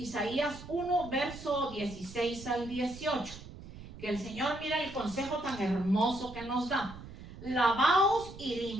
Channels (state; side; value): noise; right; rumble, 15 dB below the sound